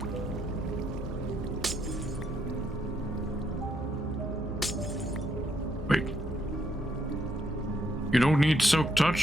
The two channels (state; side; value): normal; both; correlation 0.75